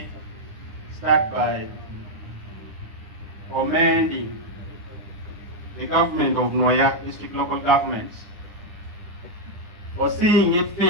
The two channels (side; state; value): left; late; 9.7 ms